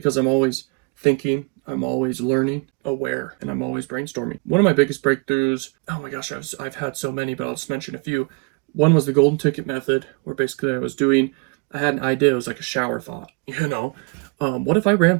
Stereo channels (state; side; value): quieter; left; 33.3 dB